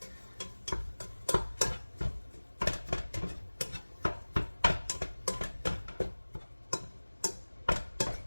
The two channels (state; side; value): inverted; both; correlation -1.00